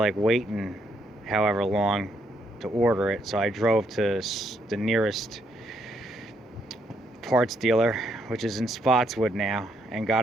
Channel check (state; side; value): normal; both; correlation 0.73